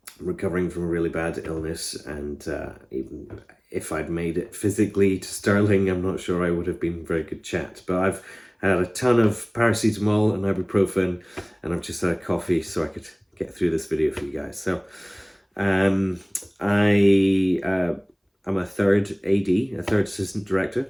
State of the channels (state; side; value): identical; both; correlation 1.00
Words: recovering from a really bad illness, and even if I'd made it physically to Stirling, I'm not sure I would have been a very good chat. But I've had a ton of paracetamol and ibuprofen, and I've just had a coffee so I could get through this video for you guys. So um, I'm a third AD, a third assistant director